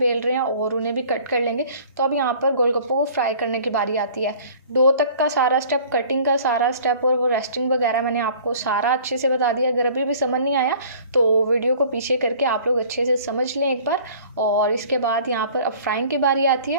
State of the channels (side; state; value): both; inverted; correlation -0.49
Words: रहे हैं और उन्हें भी कट कर लेंगे। तो अब यहाँ पर गोलगप्पों को फ्राई करने की बारी आती है। डो तक का सारा स्टेप, कटिंग का सारा स्टेप और वो रेस्टिंग वगैरह मैंने आपको सारा अच्छे से बता दिया। अगर अभी भी समझ नहीं आया तो वीडियो को पीछे करके आप लोग अच्छे से समझ लें एक बार। और इसके बाद यहाँ पर अब फ्राइंग की बारी आती